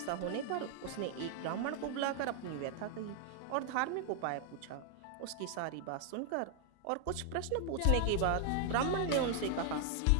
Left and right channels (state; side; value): different; both; correlation 0.00